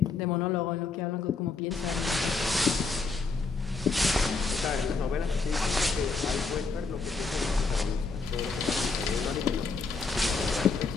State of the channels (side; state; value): right; quieter; 4.3 dB